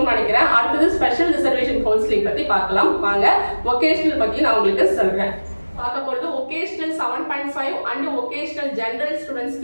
நினைக்கிறேன். அடுத்தது ஸ்பெஷல் ரிசர்வேஷன் கவுன்சிலிங் பத்தி பார்க்கலாம் வாங்க. வொகேஷனல் பத்தி நான் உங்களுக்கு சொல்றேன். பார்க்க போறது ஒகேஷனல் 7.5 அண்ட் ஒகேஷனல் ஜெனரல்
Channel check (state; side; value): inverted; both; correlation -1.00